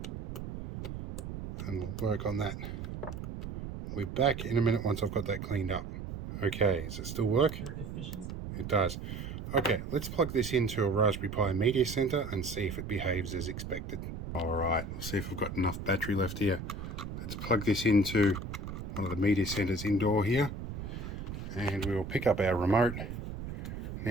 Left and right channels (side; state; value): right; noise; rumble, 7 dB below the sound